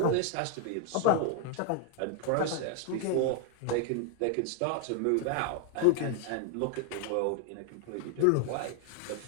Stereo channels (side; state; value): both; different; correlation 0.00